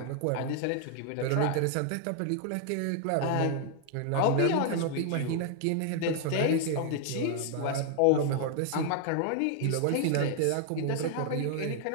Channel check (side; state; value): both; different; correlation 0.00